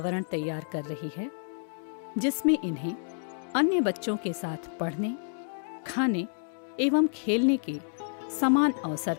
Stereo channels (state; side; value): silent; right; digital silence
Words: तैयार कर रही है जिसमें इन्हें अन्य बच्चों के साथ पढ़ने, खाने एवं खेलने के समान अवसर